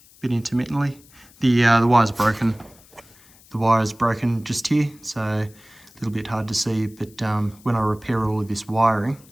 A bit intermittently. The wire's broken. The wire is broken just here, so a little bit hard to see, but when I repair all of this wiring,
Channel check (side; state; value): left; noise; hiss, 26 dB below the sound